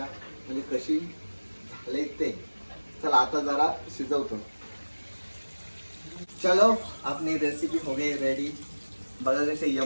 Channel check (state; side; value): inverted; both; correlation -1.00